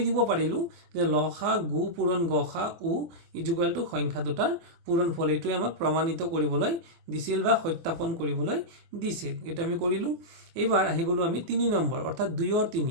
দিব পাৰিলো যে লসাগু পূৰণ গসাগু ইকুৱেল টু সংখ্যা দুটাৰ পূৰণফল এইটো আমাক প্ৰমাণিত কৰিবলৈ দিছিল বা সত্যাপন কৰিবলৈ দিছিল এটা আমি কৰিলো এবাৰ আহি গলো আমি 3 নম্বৰ অৰ্থাৎ 2 আৰু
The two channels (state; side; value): late; left; 24 ms